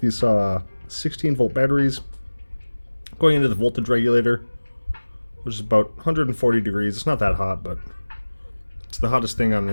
16 volt batteries going into the voltage regulator, which is about 140 degrees. It's not that hot, but it's the hottest thing on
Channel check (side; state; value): both; inverted; correlation -1.00